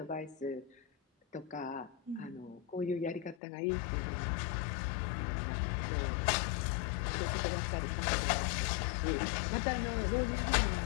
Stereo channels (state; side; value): drops out; right; at 3.4 s